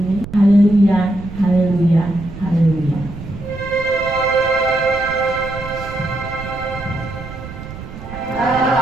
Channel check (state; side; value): noise; right; rumble, 12 dB below the sound